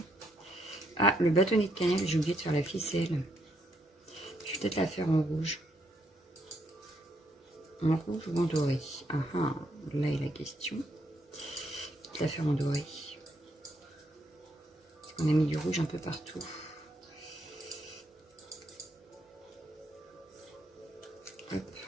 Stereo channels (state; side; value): normal; both; correlation 0.75